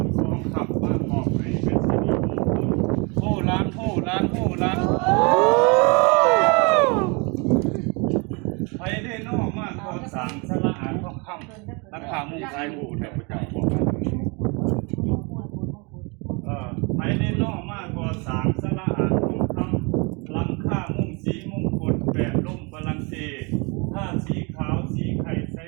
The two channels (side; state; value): left; quieter; 30.5 dB